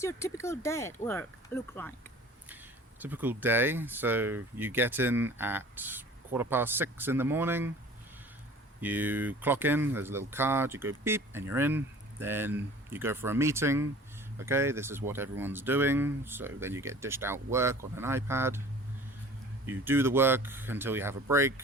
your typical day at work look like? Typical day. So you get in at 6:15 in the morning. You clock in, there's a little card, you go beep and you're in. Then you go for a meeting. Okay, this is what everyone's doing. So then you get dished out work on an iPad. You do the work until you have a break,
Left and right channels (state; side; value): normal; both; correlation 0.45